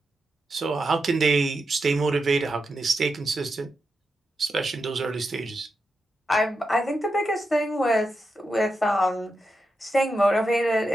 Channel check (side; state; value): both; normal; correlation 0.87